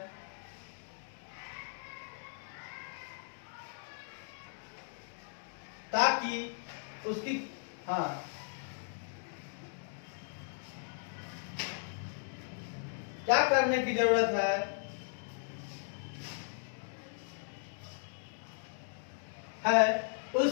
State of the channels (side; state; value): right; silent; digital silence